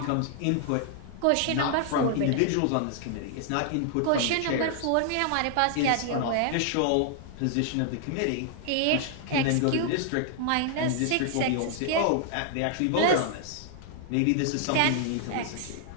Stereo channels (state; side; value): different; both; correlation 0.00